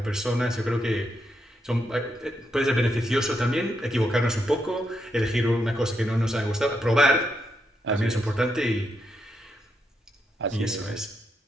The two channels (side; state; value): both; normal; correlation 0.81